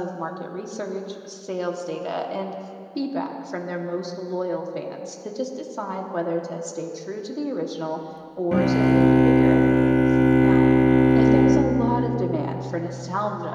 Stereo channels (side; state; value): both; identical; correlation 1.00